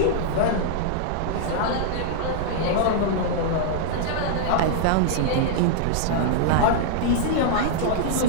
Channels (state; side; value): different; both; correlation -0.01